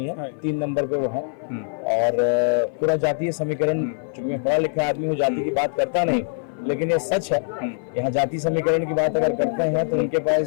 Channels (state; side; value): silent; right; 57 dB below the other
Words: है, 3 नंबर पे वो है। और पूरा जातीय समीकरण, चूंकि मैं पढ़ा लिखा आदमी हूँ, जाति की बात करता नहीं, लेकिन ये सच है। यहाँ जाति समीकरण की बात अगर करते हैं तो उनके